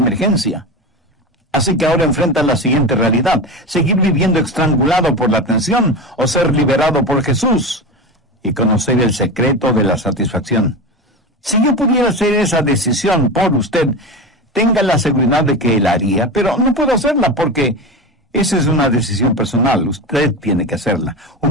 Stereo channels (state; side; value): normal; both; correlation 0.23